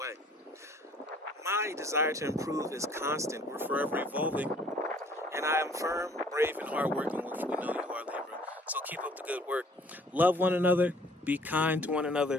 My desire to improve is constant. We're forever evolving. And I am firm, brave, and hardworking, which we know you are, Libra. So keep up the good work. Love one another. Be kind to one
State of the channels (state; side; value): normal; both; correlation 0.56